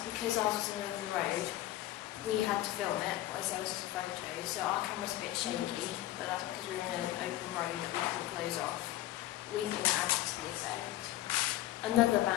because ours was in the middle of the road, we had to film it, as there was just a photo, so our camera's a bit shaky, but that's because we were in an open road that we couldn't close off. We think it adds to the effect. Another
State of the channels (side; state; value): right; quieter; 15.3 dB